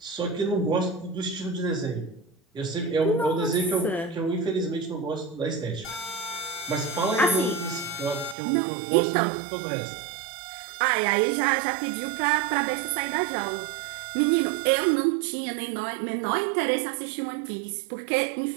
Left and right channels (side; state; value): left; drops out; at 8.3 s